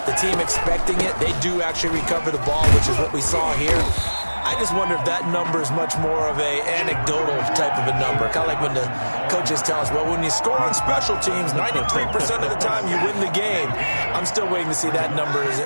the team expecting it, they do actually recover the ball, which is what we saw here. I just wonder if that number is much more of a anecdotal type of a number. Kind of like when the coaches tell us, well, when you score on special teams, 93% of the time you win the game. I'm still waiting to see that number is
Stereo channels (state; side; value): inverted; both; correlation -1.00